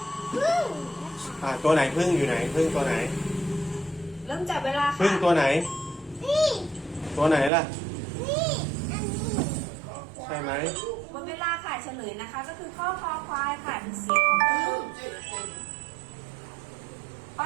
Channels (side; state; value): left; drops out; at 7.5 s